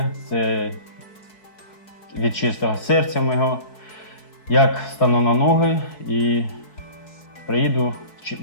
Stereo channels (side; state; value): right; late; 4.7 ms